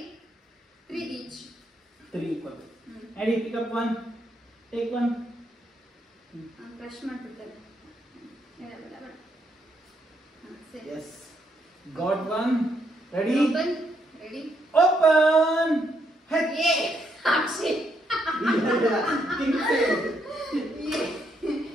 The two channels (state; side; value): normal; both; correlation 0.75